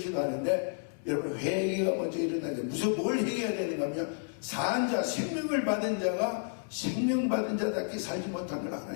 여러분 회개가 먼저 일어나야 돼요. 무슨 뭘 회개해야 되는가 하면 산 자, 생명을 받은 자가 생명 받은 자답게 살지 못한 걸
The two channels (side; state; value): right; silent; digital silence